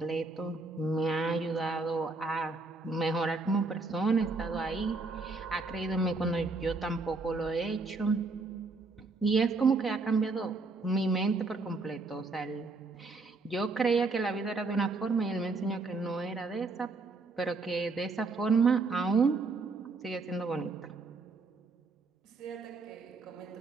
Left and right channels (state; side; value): quieter; left; 3.7 dB